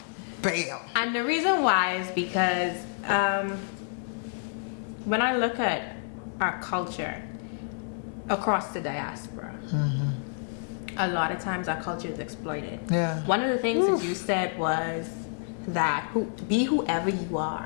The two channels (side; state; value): right; silent; digital silence